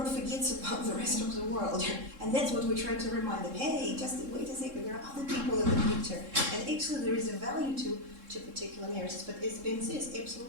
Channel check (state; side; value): late; left; 3.7 ms